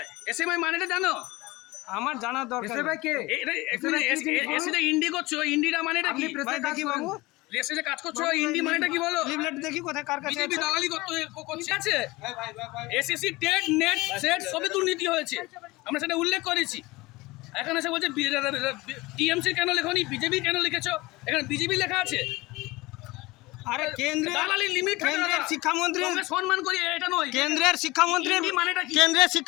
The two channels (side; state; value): right; quieter; 21.4 dB